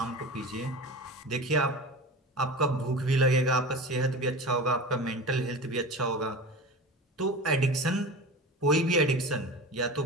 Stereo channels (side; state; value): both; normal; correlation 0.32